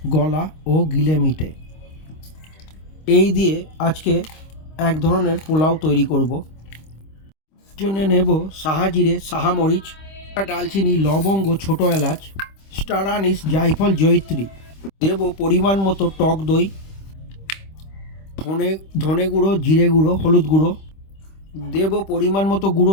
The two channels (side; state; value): right; late; 26 ms